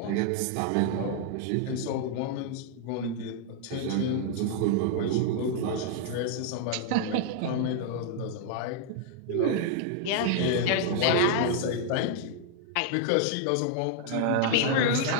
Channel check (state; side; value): different; both; correlation 0.00